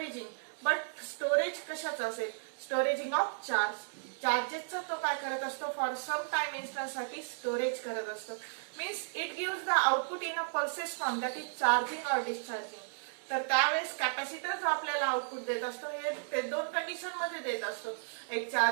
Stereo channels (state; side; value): silent; left; digital silence